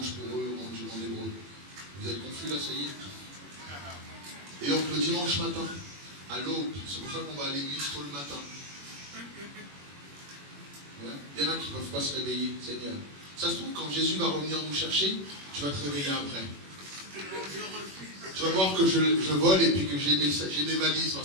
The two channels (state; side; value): late; left; 21 ms